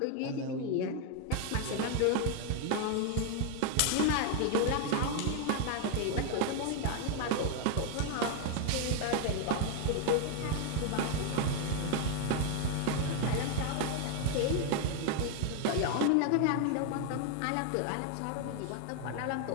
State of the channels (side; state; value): both; different; correlation 0.00